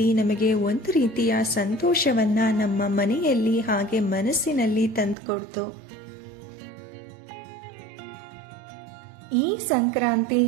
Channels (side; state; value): left; drops out; at 5.2 s